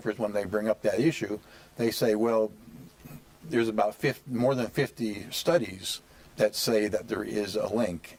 when they bring up that issue, they say, well, there's about more than 50 studies that say that there is a link,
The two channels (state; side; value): identical; both; correlation 1.00